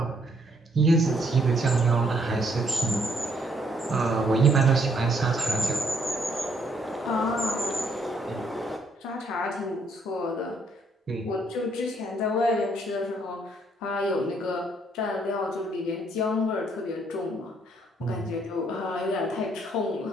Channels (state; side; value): normal; both; correlation 0.69